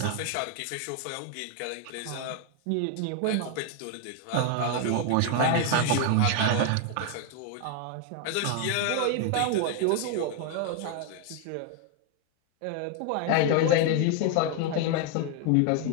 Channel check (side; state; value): both; different; correlation 0.01